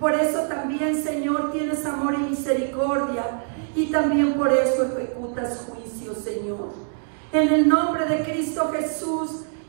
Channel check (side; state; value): left; silent; digital silence